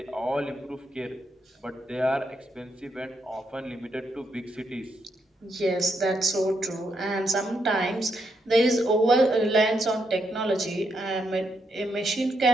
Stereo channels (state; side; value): normal; both; correlation 0.79